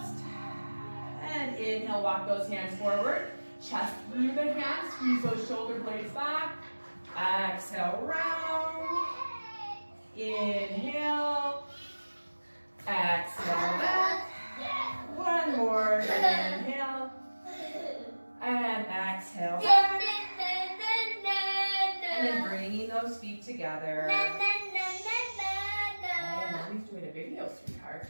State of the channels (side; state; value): both; inverted; correlation -1.00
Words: And inhale, walk those hands forward. Chest through the hands, squeeze those shoulder blades back. Exhale, round. Inhale. Exhale, back. One more. Inhale. And exhale, back. And then bringing those feet together. And Mommy's doing a video, sweetheart.